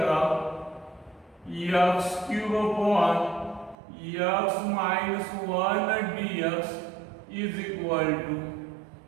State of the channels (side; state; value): left; drops out; at 3.8 s